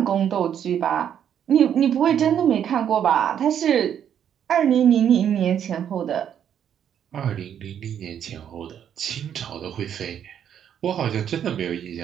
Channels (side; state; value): left; quieter; 9.2 dB